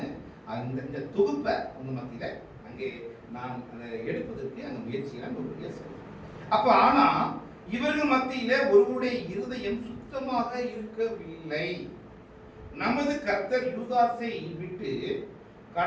நான் இந்த தொகுப்பை உங்க மத்தியில அங்கே நான் எடுப்பதற்கு அந்த முயற்சியை அப்ப ஆனா இவர்கள் மத்தியில ஒருவருடைய இருதயம் சுத்தமாக இருக்கவில்லை. நமது கர்த்தர் யூதாசை விட்டு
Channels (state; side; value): identical; both; correlation 1.00